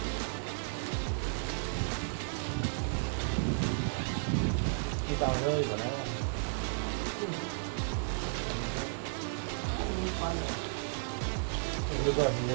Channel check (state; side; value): silent; left; digital silence